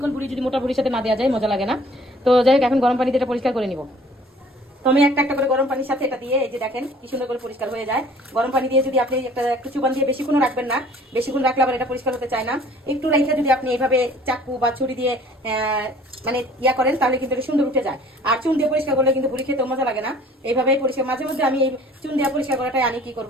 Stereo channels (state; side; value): normal; both; correlation 0.53